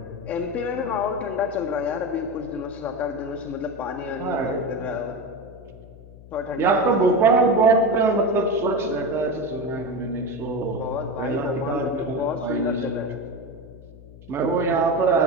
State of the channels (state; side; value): noise; left; hum, 19 dB below the sound